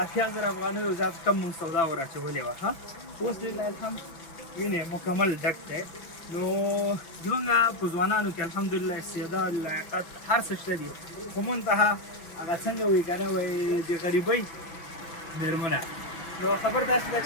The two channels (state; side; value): late; right; 5.7 ms